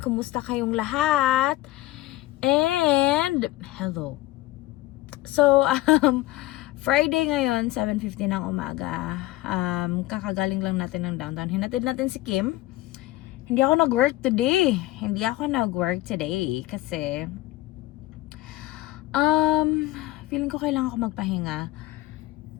kumusta kayong lahat? And hello. So, Friday ngayon, 7:50 ng umaga. Kakagaling lang natin ng downtown. Hinatid natin si Kim. Hindi ako nag-work today. Kasi feeling ko kailangan ko magpahinga.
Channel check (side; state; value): right; quieter; 17.5 dB